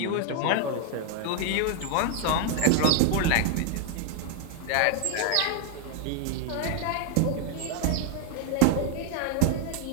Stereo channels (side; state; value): both; different; correlation 0.00